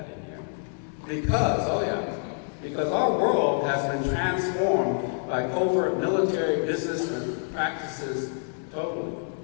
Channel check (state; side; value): silent; right; 60 dB below the other